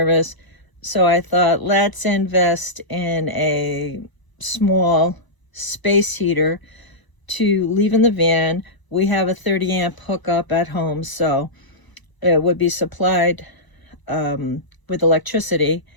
So I thought, let's invest in a small space heater to leave in the van. We have a 30 amp hookup at home, so it would be supplied with electricity.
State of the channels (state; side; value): late; right; 1.0 ms